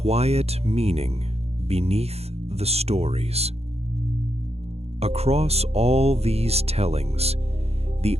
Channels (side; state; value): left; late; 0.30 ms